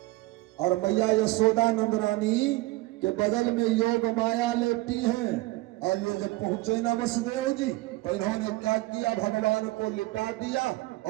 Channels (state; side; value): quieter; left; 20.1 dB